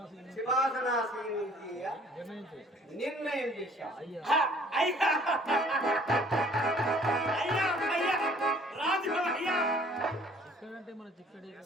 సింహాసనాసీనుడిగా నిర్ణయం చేశాం.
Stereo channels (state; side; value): normal; both; correlation 0.56